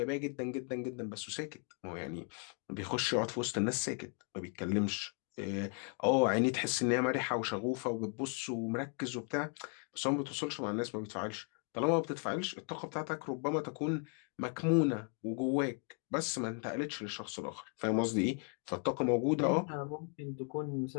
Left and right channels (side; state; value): right; quieter; 39.1 dB